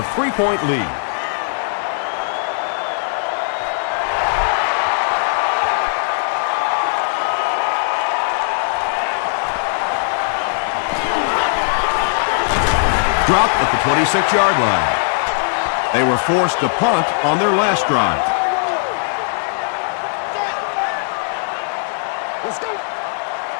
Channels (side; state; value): right; silent; 67 dB below the other